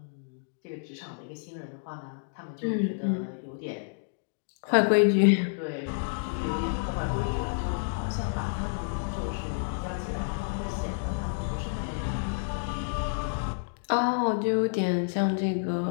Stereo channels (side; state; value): right; silent; digital silence